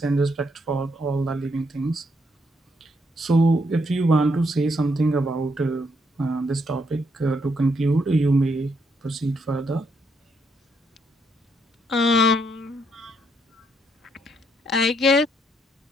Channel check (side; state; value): both; normal; correlation 0.75